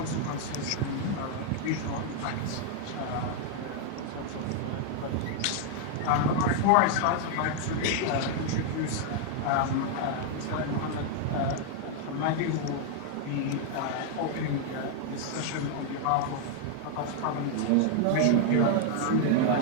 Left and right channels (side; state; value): both; different; correlation 0.00